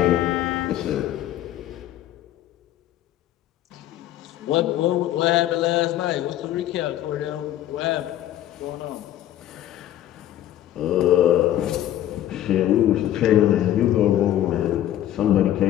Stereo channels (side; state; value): right; quieter; 12.6 dB